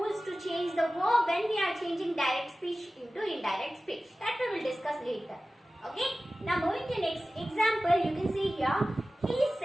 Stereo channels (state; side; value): normal; both; correlation 0.96